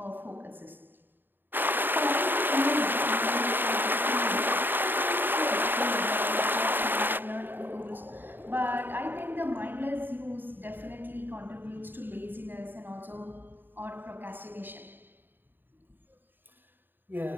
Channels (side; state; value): left; late; 0.094 ms